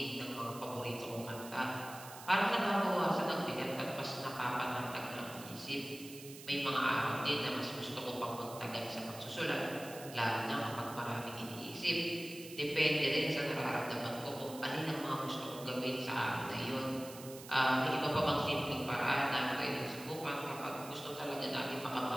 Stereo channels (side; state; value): right; noise; hiss, 15 dB below the sound